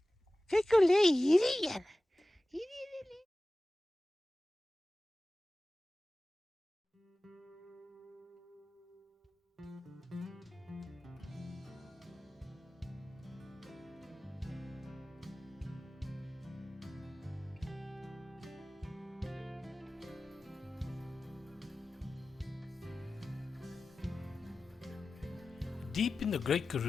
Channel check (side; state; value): both; normal; correlation 0.96